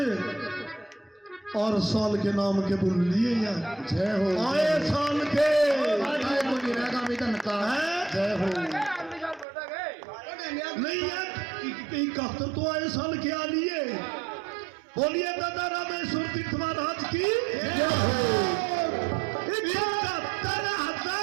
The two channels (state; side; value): drops out; left; at 9.5 s